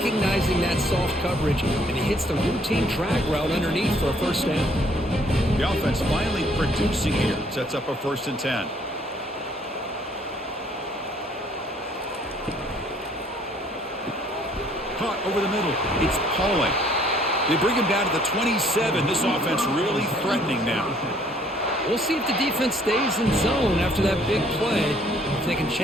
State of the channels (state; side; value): normal; both; correlation 0.62